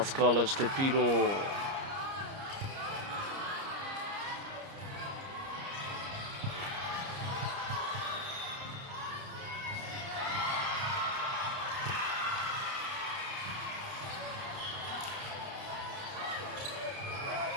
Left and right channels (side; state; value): left; late; 30 ms